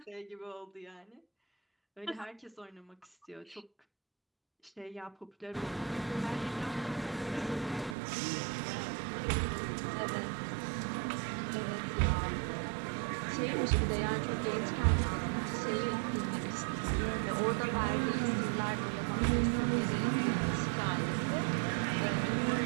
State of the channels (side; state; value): left; drops out; at 8.0 s